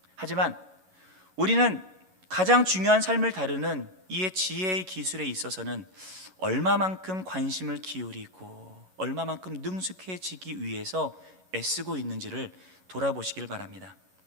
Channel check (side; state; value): left; late; 11 ms